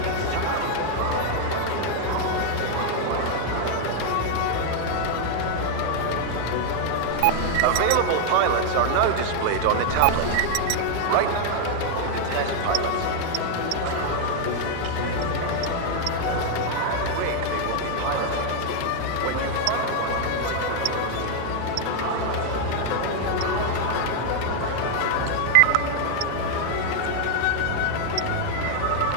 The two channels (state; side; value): different; both; correlation 0.00